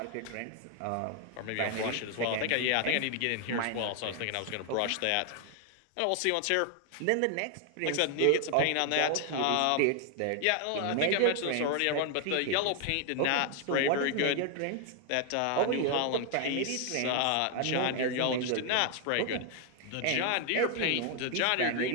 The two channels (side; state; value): both; different; correlation 0.00